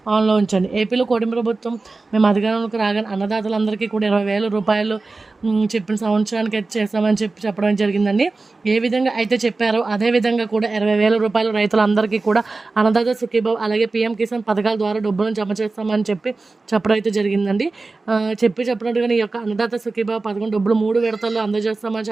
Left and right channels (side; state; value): left; quieter; 3.6 dB